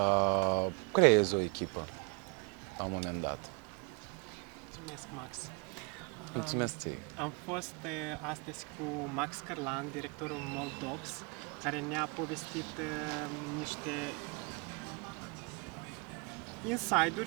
creezi o echipă la un moment dat. Mulțumesc, Max. Mulțumesc ție. Am fost astăzi cu Max Cărlan, directorul Moldox, care ne-a povestit niște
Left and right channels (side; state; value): left; quieter; 31.8 dB